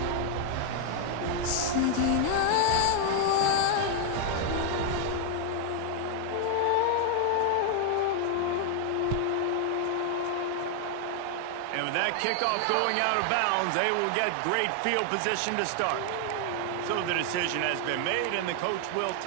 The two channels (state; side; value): different; both; correlation 0.00